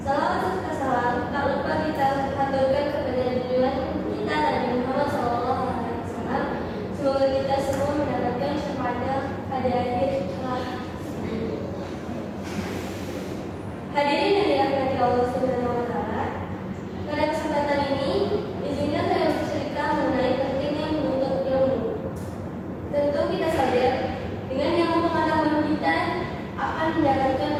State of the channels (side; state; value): both; identical; correlation 1.00